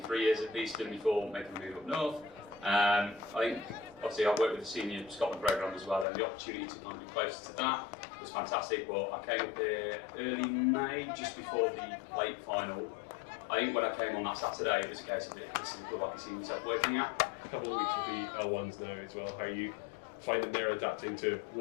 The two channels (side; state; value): right; drops out; at 6.1 s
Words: 3 years at Beeston before making the move up north. I think obviously I worked with the senior Scotland programme as well, and the opportunity to kind of be closer to that was fantastic. But I came up here early May, just before the plate final. I think when I came on that Saturday, it was a case of this is a club I can see myself working at. A couple of weeks with the L1s now as well. How are you finding they're adapting to